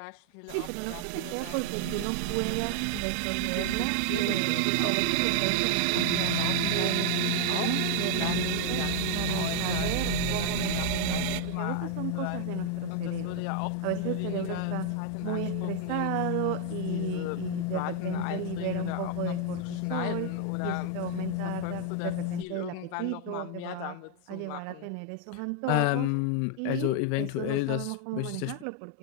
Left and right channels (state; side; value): different; both; correlation 0.00